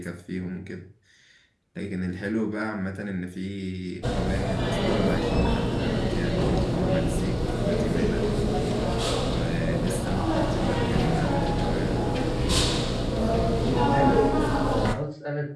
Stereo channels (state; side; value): identical; both; correlation 1.00